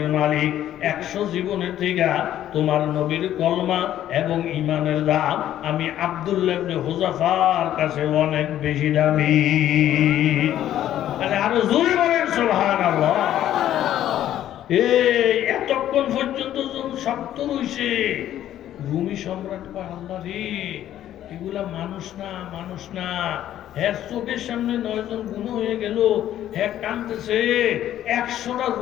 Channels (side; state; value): right; quieter; 11.9 dB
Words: মালিক, 100 জীবনের থেকে তোমার নবীর কলমা এবং ঈমানের দাম আমি আব্দুল্লাহ ইবনে হুযাফার কাছে অনেক বেশি দামি। আরো জোরে বলেন সুবহানাল্লাহ। এই এতক্ষণ পর্যন্ত যখন শব্দ রইছে, রুমি সম্রাট কয়, আল্লাহ রে, এগুলা মানুষ না, মানুষ না। হ্যাঁ চোখের সামনে 9 জন গুণ হয়ে গেল, হ্যাঁ কাঁদতেছে, 100টা